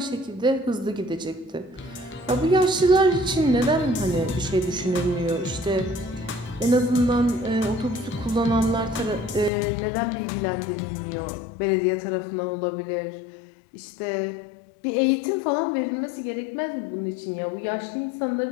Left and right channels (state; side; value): drops out; right; at 9.5 s